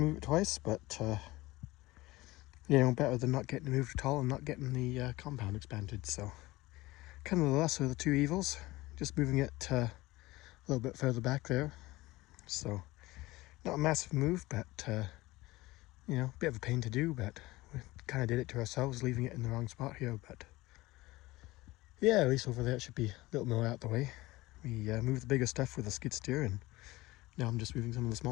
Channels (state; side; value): quieter; right; 19.5 dB